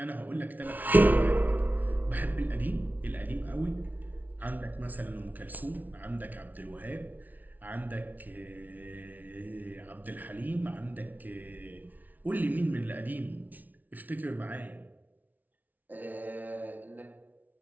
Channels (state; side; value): late; left; 0.079 ms